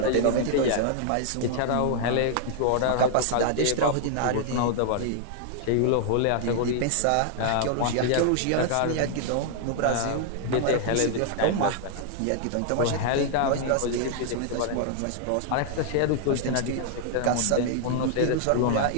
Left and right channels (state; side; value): different; both; correlation -0.01